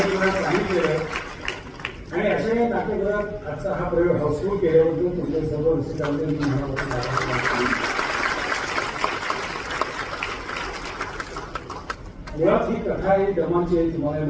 सांगितलेलं आणि अशा या नाट्यगृहात आजचा हा प्रयोग हाऊसफुल केल्याबद्दल तुमच्या सर्व रसिकांचे मुळात ही कथा आहे दमाची आहे. तुम्हाला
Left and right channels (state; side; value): identical; both; correlation 1.00